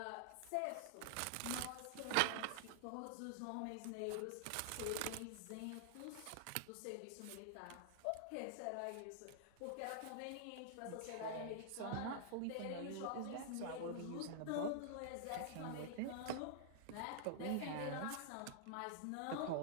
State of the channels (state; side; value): different; both; correlation -0.01